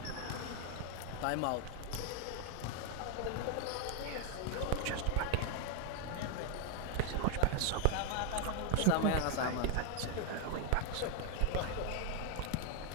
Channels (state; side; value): different; both; correlation 0.00